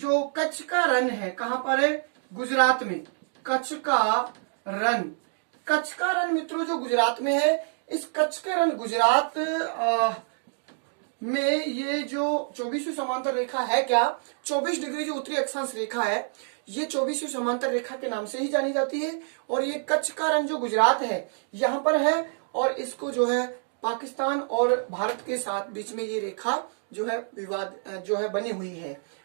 कच्छ का रण है, कहां पर है? गुजरात में। कच्छ का रण मित्रों जो गुजरात में है, इस कच्छ के रण गुजरात में ये जो 24वीं समांतर रेखा है, क्या 24 डिग्री जो उत्तरी अक्षांश रेखा है, ये 24वीं समांतर रेखा के नाम से ही जानी जाती है। और ये कच्छ का रण जो गुजरात है यहाँ पर है, और इसको जो है पाकिस्तान और भारत के साथ बीच में ये रेखा जो है विवाद जो है बनी हुई है।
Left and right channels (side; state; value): left; silent; digital silence